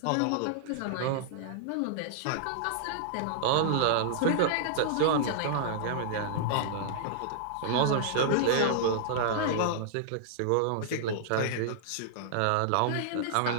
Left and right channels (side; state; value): both; different; correlation -0.01